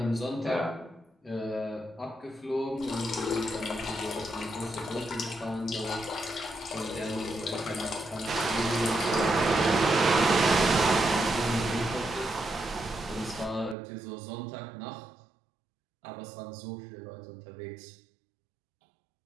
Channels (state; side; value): drops out; left; at 13.8 s